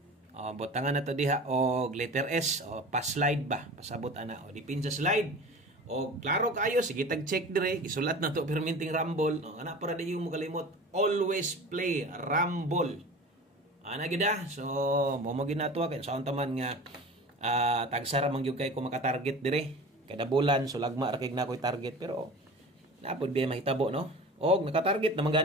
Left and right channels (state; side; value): normal; both; correlation 0.37